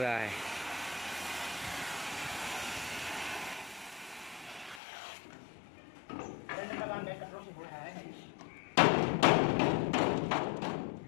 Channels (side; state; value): right; drops out; at 4.8 s